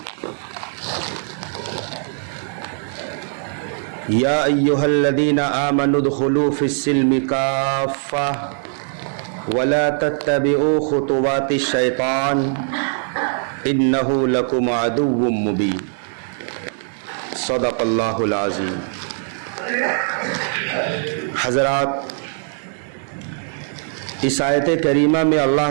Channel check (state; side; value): silent; left; 65 dB below the other